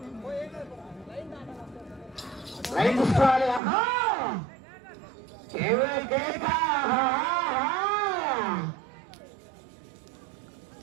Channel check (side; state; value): left; drops out; at 3.6 s